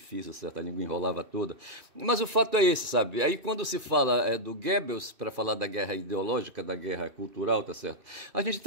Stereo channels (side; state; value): left; late; 2.4 ms